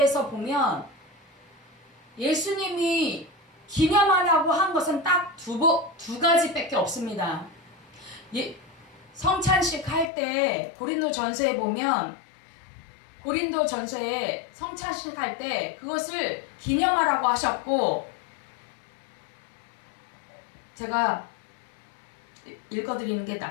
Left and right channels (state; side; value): drops out; right; at 10.1 s